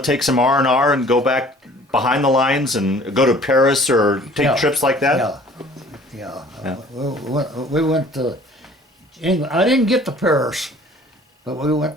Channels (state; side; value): normal; both; correlation 0.51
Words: take some R&R and go back behind the lines and go to Paris or take trips like that? Yeah. We went to England. I didn't get to Paris, but we went